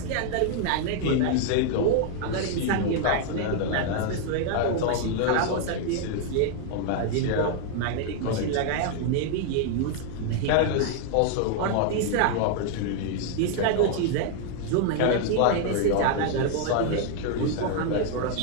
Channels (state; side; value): different; both; correlation 0.00